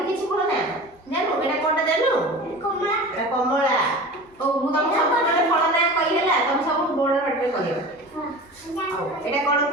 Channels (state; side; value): normal; both; correlation 0.35